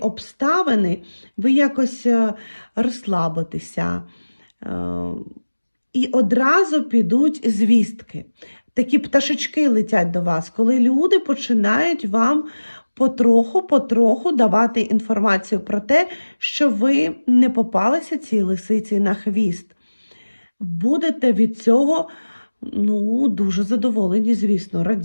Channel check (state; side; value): inverted; both; correlation -1.00